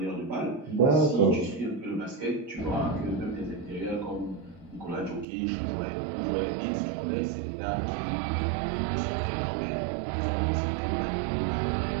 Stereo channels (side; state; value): left; drops out; at 5.2 s